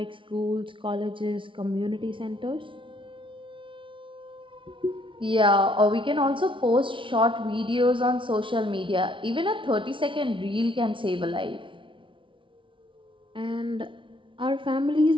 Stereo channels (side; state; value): left; late; 0.25 ms